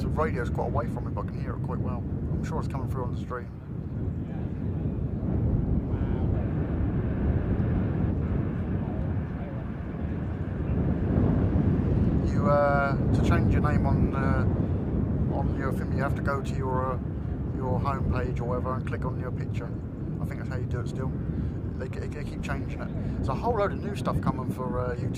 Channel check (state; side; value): identical; both; correlation 1.00